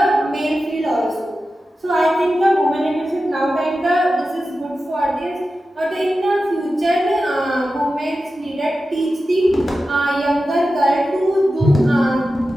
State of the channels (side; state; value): both; normal; correlation 0.93